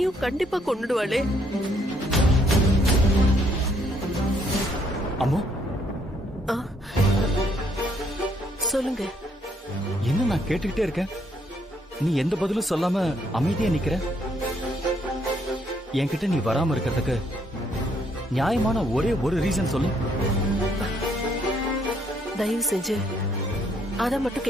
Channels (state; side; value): normal; both; correlation 0.70